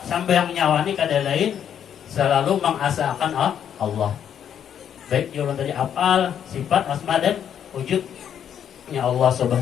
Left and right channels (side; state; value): right; quieter; 9.0 dB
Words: Sembahyang nyawa ini kada lain selalu mengasalkan Allah, baik jalan tadi afal, sifat, asma dan wujudnya Allah